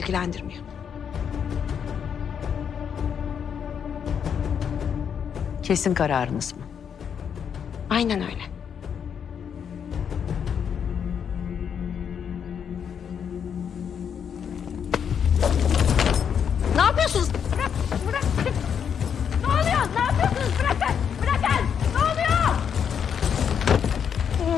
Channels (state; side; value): quieter; right; 7.7 dB